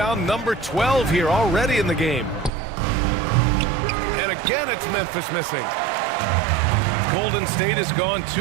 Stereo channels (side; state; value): left; drops out; at 2.5 s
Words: number 12 here already in the game. And again, it's Memphis missing. Golden State has gone